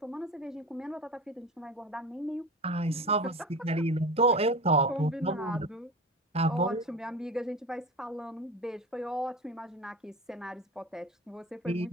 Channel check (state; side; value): normal; both; correlation 0.31